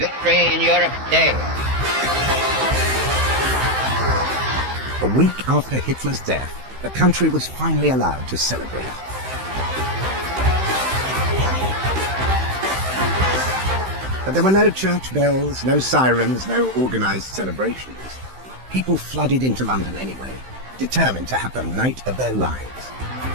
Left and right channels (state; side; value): late; left; 15 ms